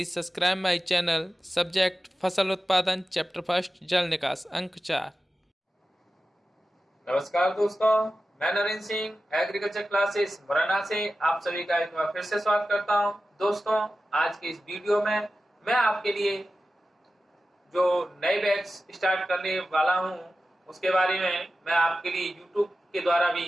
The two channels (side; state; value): both; normal; correlation 0.93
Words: subscribe my channel. Subject फसल उत्पादन chapter first जल निकास अंक 4। नमस्कार दोस्तों, मैं नरेंद्र सिंह एग्रीकल्चर क्लासेस मुरैना से आप सभी का एक बार फिर से स्वागत करता हूं। दोस्तों, आज के इस वीडियो में मैं आपके लिए जो नए बैच स्टार्ट करने वाला हूं उसके बारे में मैं आपके लिए यूट्यूब के द्वारा